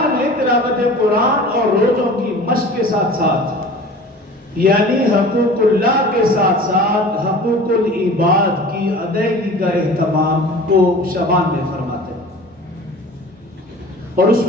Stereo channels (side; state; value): both; normal; correlation 0.41